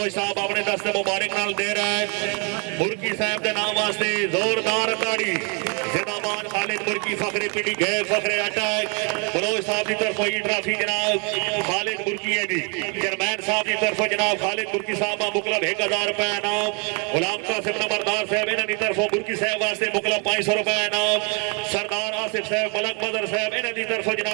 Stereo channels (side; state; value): left; quieter; 36.3 dB